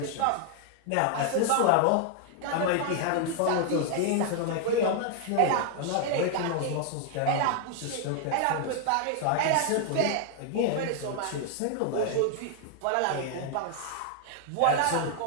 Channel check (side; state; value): both; different; correlation 0.00